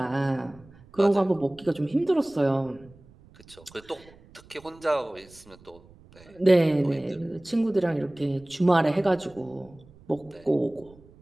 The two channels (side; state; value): right; noise; rumble, 25 dB below the sound